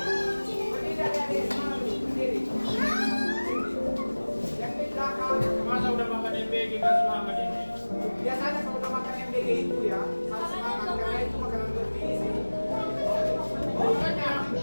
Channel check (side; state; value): both; inverted; correlation -1.00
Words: berdiri adik-adik semua dulu, berdiri. Yang di belakang. Masa udah makan MBG kan semangat ini? Biasanya kalau udah makan MBG itu ya harus semangat karena itu makanan bergizi. Pokoknya